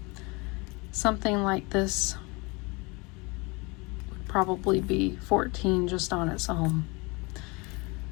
Something like this would probably be $14 just on its own.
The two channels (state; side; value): quieter; right; 27.4 dB